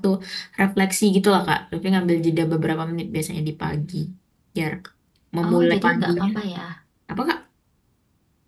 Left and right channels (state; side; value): identical; both; correlation 1.00